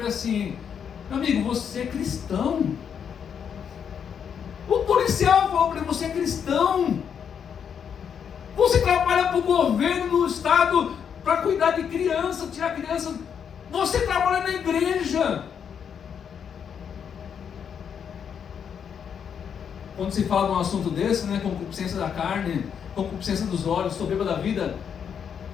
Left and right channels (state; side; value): quieter; right; 7.6 dB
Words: ele assim: meu amigo, você é cristão? O policial falou para ele: você é cristão? Você trabalha para o governo do estado para cuidar de criança, tirar criança. Você trabalha na igreja. Quando se fala de um assunto desse, concupiscência da carne, concupiscência dos olhos, soberba da vida,